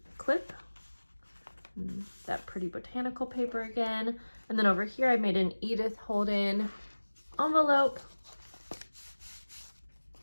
clip, that pretty botanical paper again. And then over here I made an Edith Holden envelope,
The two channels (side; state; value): both; inverted; correlation -1.00